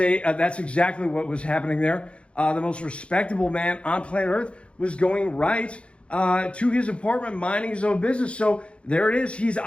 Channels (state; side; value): late; right; 0.059 ms